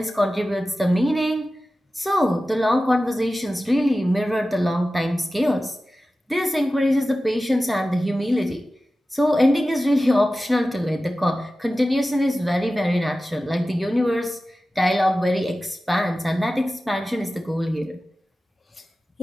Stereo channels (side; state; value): both; normal; correlation 0.95